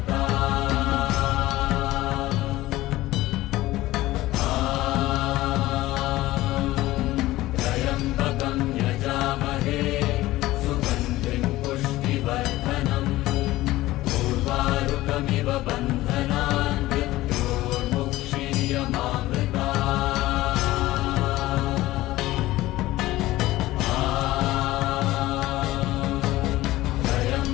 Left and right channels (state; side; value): quieter; right; 17.1 dB